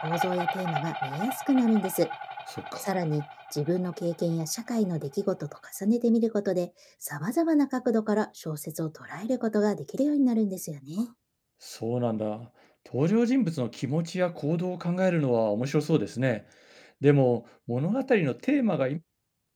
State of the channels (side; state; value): both; identical; correlation 1.00